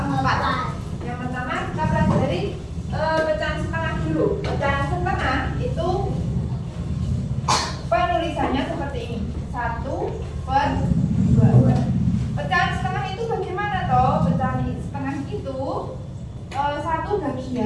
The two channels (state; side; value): identical; both; correlation 1.00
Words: Yang pertama kita pelajari pecahan setengah dulu. Pecahan setengah itu penulisannya seperti ini, 1/2. Pecahan setengah itu bagaimana toh? Pecahan setengah itu satu